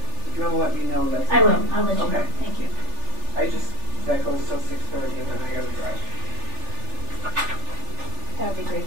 If you want to let me know, that's I will. fine. I'll let you know. Thank you. That goes till 6:30, and then I got to drive. That would be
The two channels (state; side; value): late; left; 3.4 ms